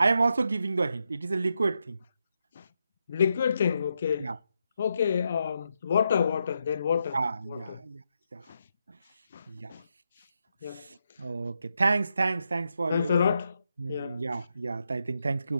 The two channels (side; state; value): both; inverted; correlation -0.83